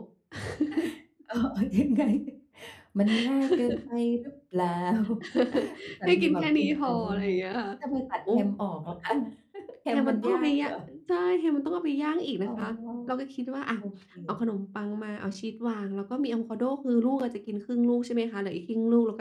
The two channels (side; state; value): both; identical; correlation 1.00